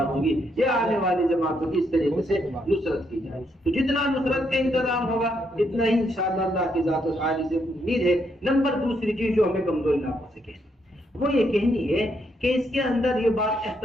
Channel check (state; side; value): normal; both; correlation 0.76